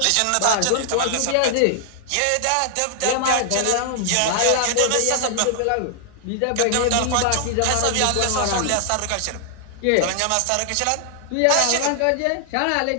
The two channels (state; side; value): different; both; correlation 0.00